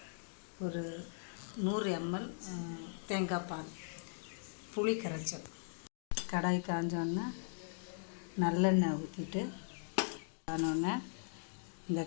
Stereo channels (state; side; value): silent; right; digital silence